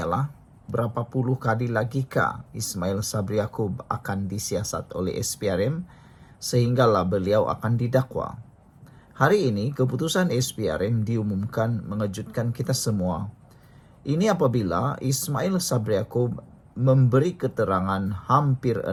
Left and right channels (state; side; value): identical; both; correlation 1.00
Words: berapa puluh kali lagikah Ismail Sabri Yaakob akan disiasat oleh SPRM sehinggalah beliau akan didakwa. Hari ini keputusan SPRM diumumkan mengejutkan kita semua. Ini apabila Ismail Sabri Yaakob memberi keterangan hampir